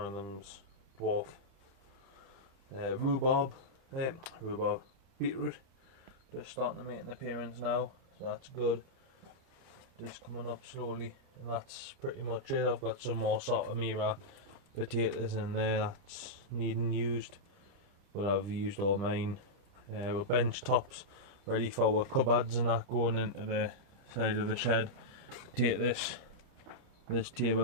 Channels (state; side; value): late; left; 30 ms